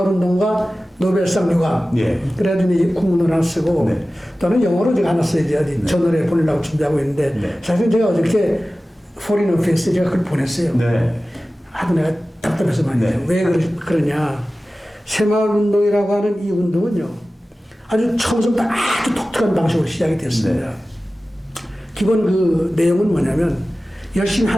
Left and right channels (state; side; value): normal; both; correlation 0.96